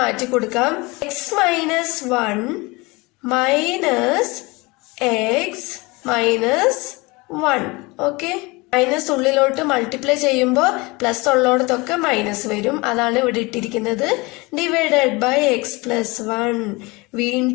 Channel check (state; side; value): quieter; right; 24.8 dB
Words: മാറ്റി കൊടുക്കാം. X minus 1 minus x minus 1. Okay, minus ഉള്ളിലോട്ട് മൾട്ടിപ്ലൈ ചെയ്യുമ്പോൾ പ്ലസ് ഉള്ളോടത്തൊക്കെ മൈനസ് വരും. അതാണ് ഇവിടെ ഇട്ടിരിക്കുന്നത്. Divided by x plus 1.